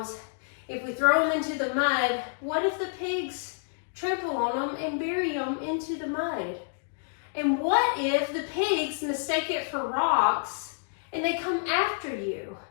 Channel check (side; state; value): right; silent; digital silence